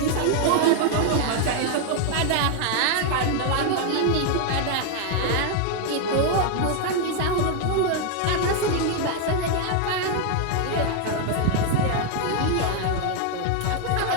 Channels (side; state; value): both; different; correlation 0.00